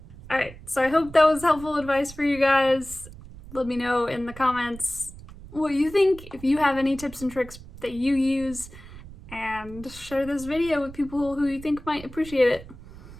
Alright, so I hope that was helpful advice for you guys. Let me know in the comments what you think, if you have any tips and tricks that you use, and share this video with people who you think might appreciate it.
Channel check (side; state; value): right; noise; rumble, 17 dB below the sound